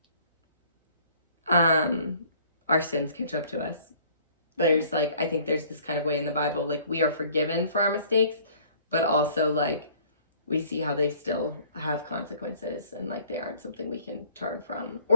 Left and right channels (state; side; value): inverted; both; correlation -0.55